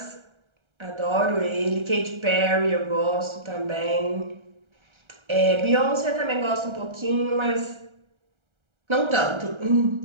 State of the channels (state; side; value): late; left; 1.3 ms